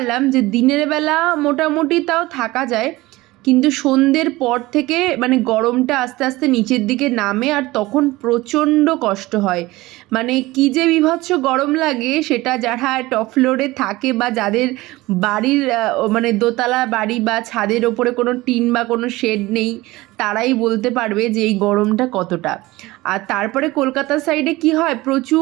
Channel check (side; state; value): left; quieter; 19.6 dB